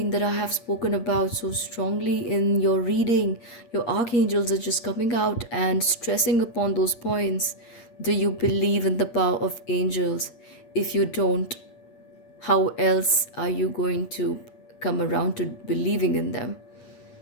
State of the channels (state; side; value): late; right; 8.5 ms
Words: that I have spoken about so strongly in your reading, your archangels are just coming out and stressing upon those points. Do you believe in the power of angels? If you don't, how else are you going to come around to believing in them?